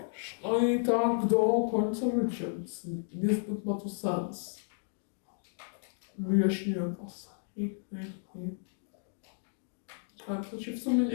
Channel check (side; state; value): right; silent; digital silence